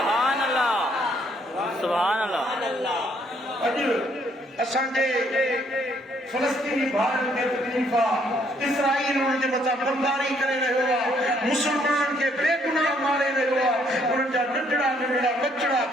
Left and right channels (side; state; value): both; normal; correlation 0.67